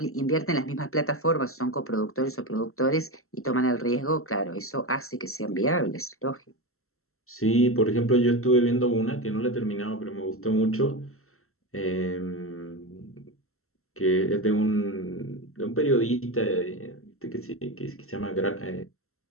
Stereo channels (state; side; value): late; right; 0.63 ms